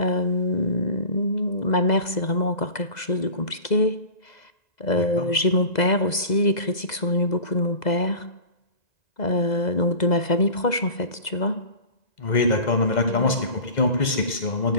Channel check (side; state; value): right; late; 2.0 ms